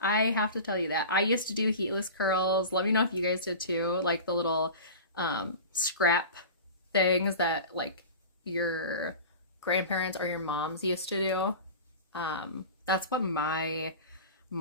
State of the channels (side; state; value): both; inverted; correlation -0.34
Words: have to tell you that. I used to do heatless curls. Let me know if you guys did too, like the little scrap things that like your grandparents or your moms used to do. That's what my